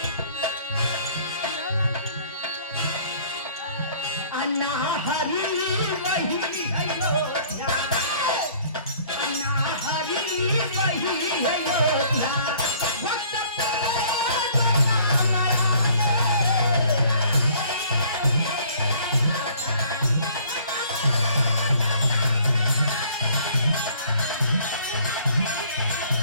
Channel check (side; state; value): both; inverted; correlation -0.56